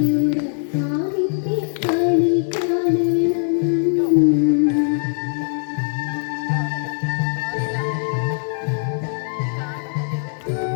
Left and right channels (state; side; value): silent; right; 64 dB below the other